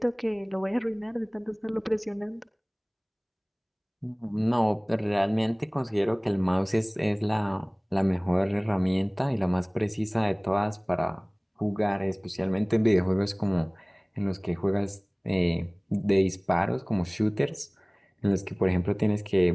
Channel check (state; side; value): identical; both; correlation 1.00